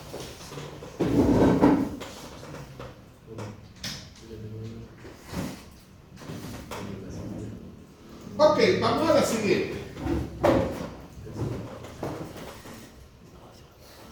Ok, vamos a la siguiente.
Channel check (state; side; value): identical; both; correlation 1.00